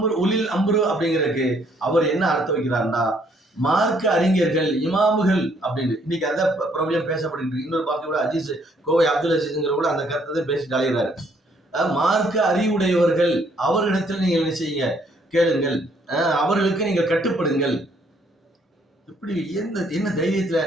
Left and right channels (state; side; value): normal; both; correlation 0.67